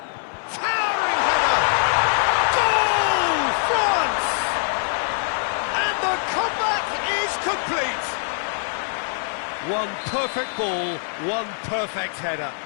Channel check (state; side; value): silent; right; 56 dB below the other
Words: Towering header! Goal! France! And the comeback is complete! One perfect ball, one perfect header.